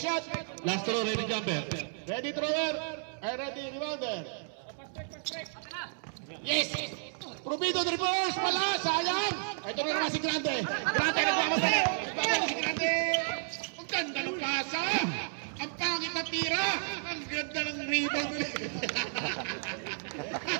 Last throw, ready jumper. Ready thrower. Ready rebounder. Yes! Rubido the reverse! Wala! Sayang! Ito na naman si Grande. Grande nagmamadali! Nagmamadali si Grande! Ang ganda ng pasa! Ang pangit na tira! Ang ganda ng rebound!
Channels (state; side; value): silent; left; 56 dB below the other